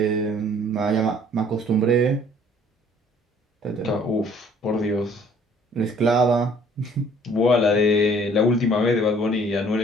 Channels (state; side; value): normal; both; correlation 0.57